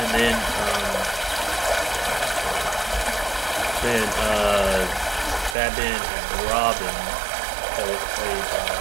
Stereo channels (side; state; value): left; drops out; at 5.6 s